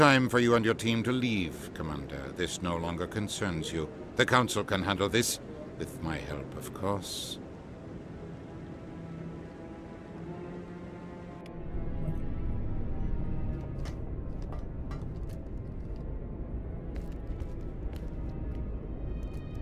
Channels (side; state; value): both; identical; correlation 1.00